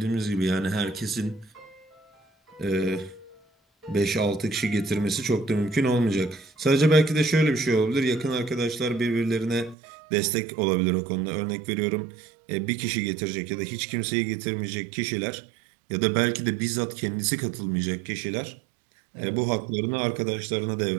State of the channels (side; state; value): left; drops out; at 9.8 s